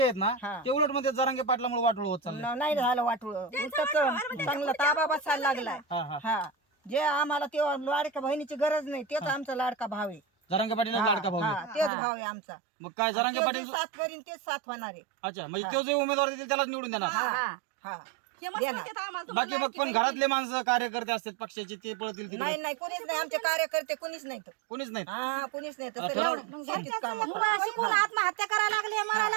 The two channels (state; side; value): drops out; left; at 11.9 s